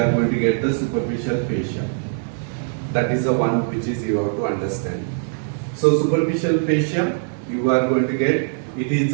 going to get the superficial fascia. That is the one which is you have to understand. So superficial fascia, you are going to get, it is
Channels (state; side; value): silent; left; digital silence